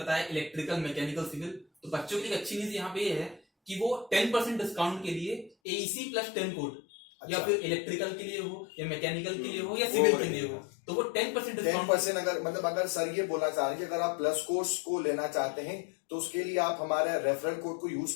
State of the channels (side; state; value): right; drops out; at 5.5 s